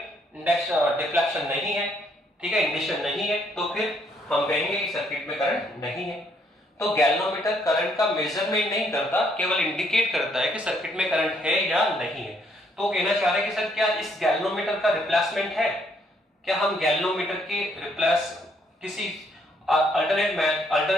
डिफ्लेक्शन नहीं है, ठीक है, इंडिकेशन नहीं है, तो फिर हम कहेंगे कि सर्किट में करंट नहीं है। तो गैल्वेनोमीटर करंट का मेजरमेंट नहीं करता, केवल इंडिकेट करता है कि सर्किट में करंट है या नहीं है। तो कहना चाह रहे हैं कि सर क्या इस गैल्वेनोमीटर का रिप्लेसमेंट है, क्या हम गैल्वेनोमीटर की रिप्लेस किसी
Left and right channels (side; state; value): both; normal; correlation 0.70